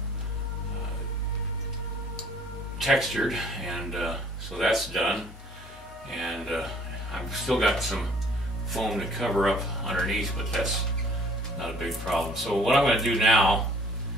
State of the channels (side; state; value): both; normal; correlation 0.56